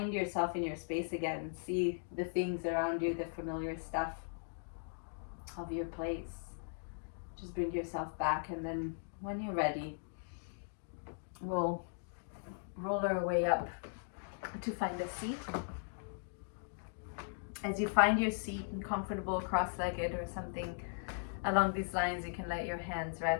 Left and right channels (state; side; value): silent; right; digital silence